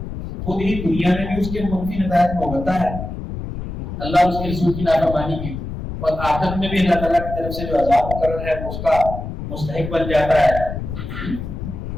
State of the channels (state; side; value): noise; left; rumble, 7 dB below the sound